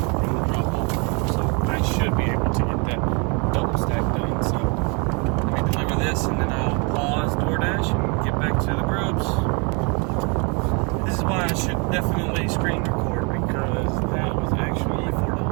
the drop off. So I should be able to get that double stack done. So let me deliver this and then I'll pause DoorDash and get back to the Grubs. This is why I should definitely screen record, because that was actually only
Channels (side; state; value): left; quieter; 33.2 dB